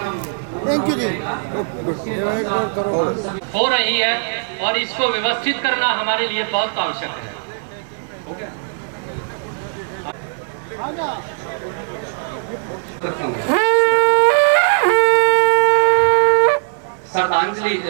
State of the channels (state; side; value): silent; left; 57 dB below the other